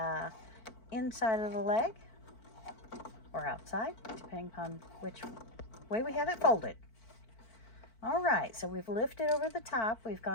inside of the leg, or outside, depending upon which way we have it folded. All right, so we've lifted over the top. We've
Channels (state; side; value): late; right; 4.5 ms